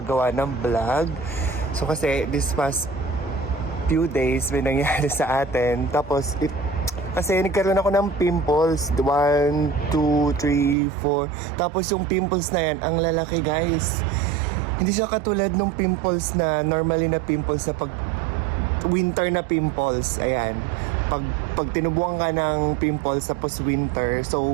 ng vlog. So, kasi this past few days may nangyari sa atin. Tapos, kasi nagkaroon ako ng pimples. 1, 2, 3, 4. Tapos yung pimples na yan, ang lalaki guys. Hindi siya katulad ng pimples na normally na pimples na pag winter na pimples. Ayan. Pag tinubuan ka ng pimples tapos winter,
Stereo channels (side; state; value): left; drops out; at 10.8 s